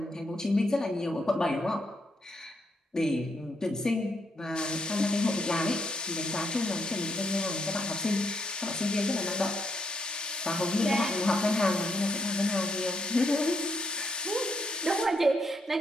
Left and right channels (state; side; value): normal; both; correlation 0.77